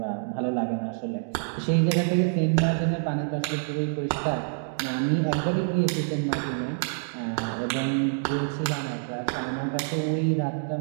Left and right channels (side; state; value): left; silent; digital silence